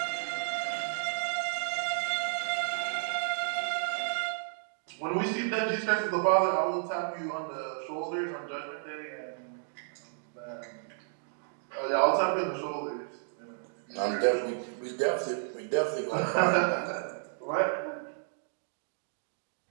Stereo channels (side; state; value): left; silent; digital silence